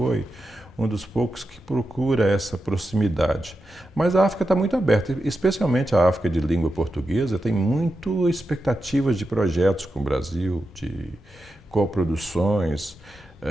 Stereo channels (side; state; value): both; normal; correlation 0.89